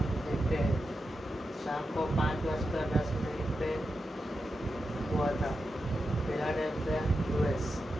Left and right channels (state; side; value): normal; both; correlation 0.89